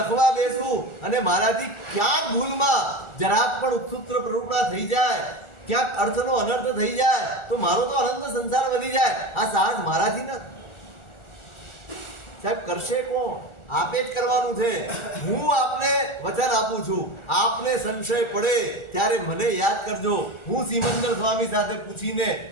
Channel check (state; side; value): late; right; 1.4 ms